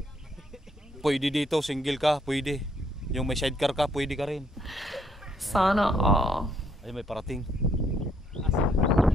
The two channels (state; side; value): normal; both; correlation 0.71